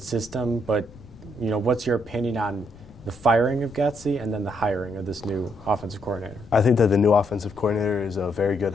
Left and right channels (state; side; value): noise; left; rumble, 22 dB below the sound